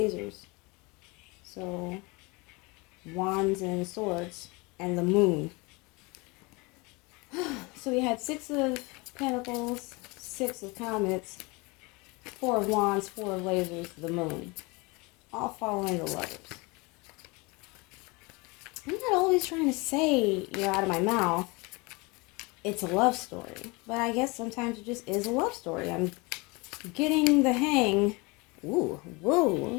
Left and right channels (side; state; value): right; quieter; 26.5 dB